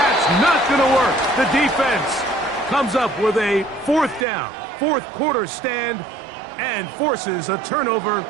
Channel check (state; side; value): drops out; left; at 4.2 s